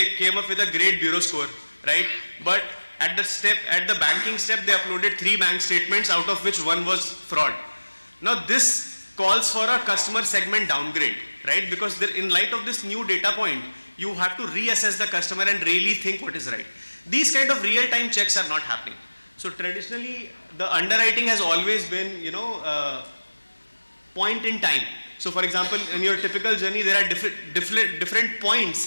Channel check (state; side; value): inverted; both; correlation -1.00